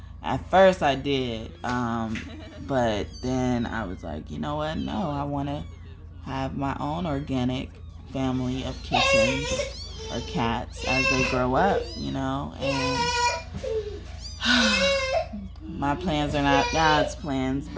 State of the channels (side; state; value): both; identical; correlation 1.00